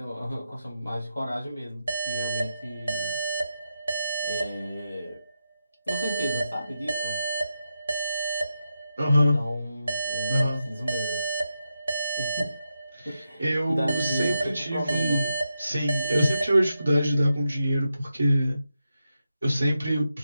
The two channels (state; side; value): inverted; both; correlation -0.87